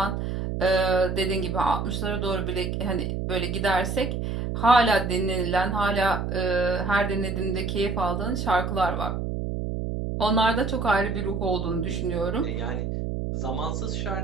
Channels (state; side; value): noise; right; hum, 2 dB below the sound